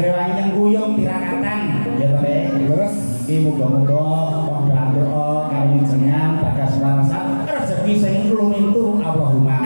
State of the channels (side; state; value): both; inverted; correlation -1.00